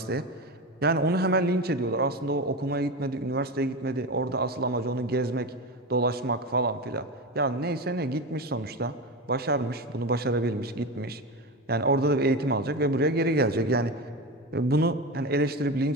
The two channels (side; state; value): both; normal; correlation 0.21